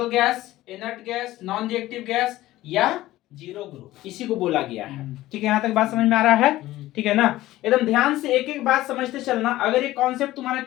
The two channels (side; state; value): right; quieter; 16.1 dB